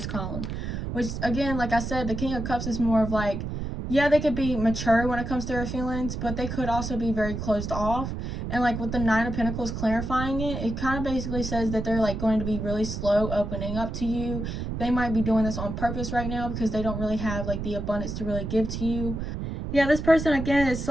column, which, again, like I said, the King of Cups is more of like, yeah, they could be mature when it comes to their feelings, but they could also be very closed off. And like with the Nine of Pentacles clarifying it, it kind of basically says that they're like going to be really slow opening up to you. They might be doing this on purpose right now because they don't really have like the abundance to really give to you. Yeah, this person, again, is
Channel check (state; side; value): noise; right; rumble, 5 dB below the sound